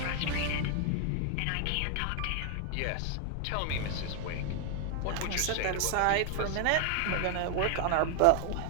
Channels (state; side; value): different; both; correlation 0.00